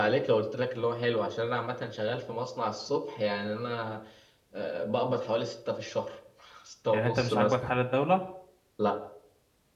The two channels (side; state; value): both; identical; correlation 1.00